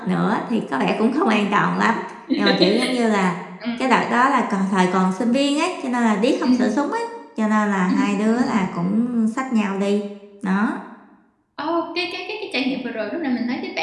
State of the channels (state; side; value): identical; both; correlation 1.00